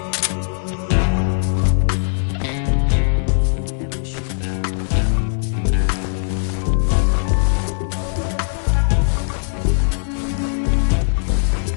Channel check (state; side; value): silent; right; digital silence